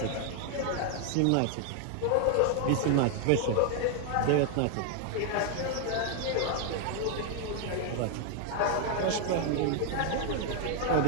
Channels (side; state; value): both; different; correlation 0.01